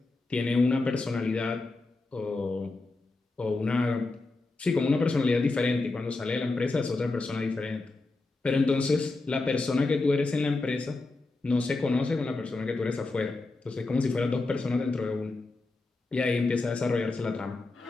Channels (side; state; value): right; quieter; 3.3 dB